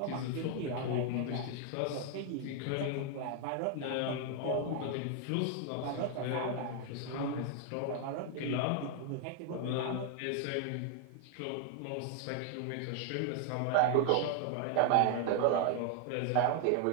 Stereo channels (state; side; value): different; both; correlation 0.00